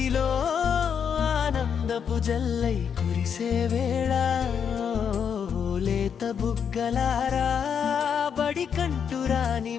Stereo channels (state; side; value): quieter; right; 7.4 dB